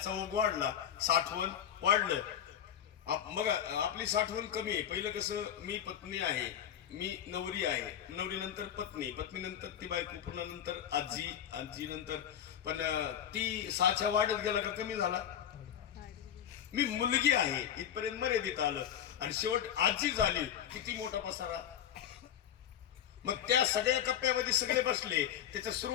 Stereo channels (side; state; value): right; quieter; 9.8 dB